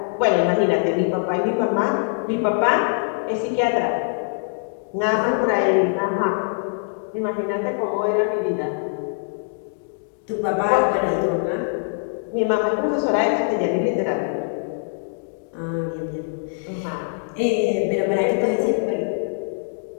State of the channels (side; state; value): right; silent; digital silence